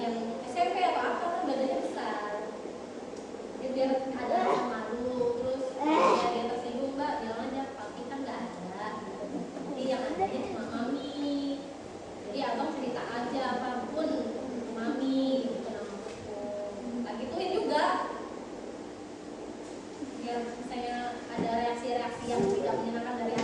SMP atau apa kan badannya besar ya, biar ada rasa malu. Terus ya dia tersinggung mbak, bilang aja papi kan nggak ada gitu. Jadi yang ada cuma mami. Jadi abang cerita aja apapun ke mami gitu namaku. Tak gituin juga. Biar misalnya ada reaksi-reaksi yang tidak menyenangkan dari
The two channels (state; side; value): identical; both; correlation 1.00